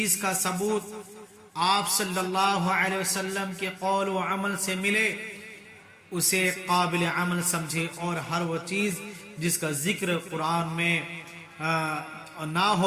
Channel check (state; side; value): identical; both; correlation 1.00